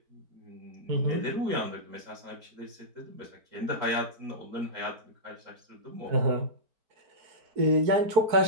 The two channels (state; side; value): late; left; 4.4 ms